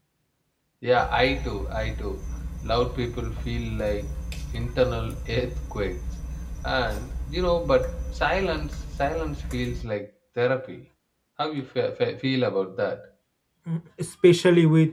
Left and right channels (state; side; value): identical; both; correlation 1.00